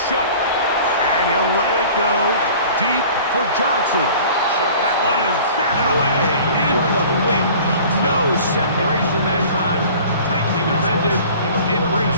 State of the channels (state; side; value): inverted; both; correlation -0.45